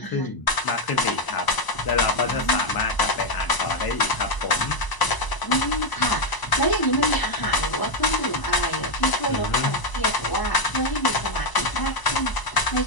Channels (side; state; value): right; late; 1.0 ms